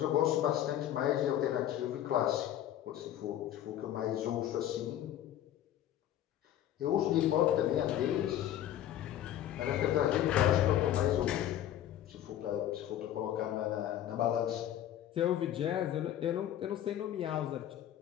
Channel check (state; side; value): quieter; right; 11.7 dB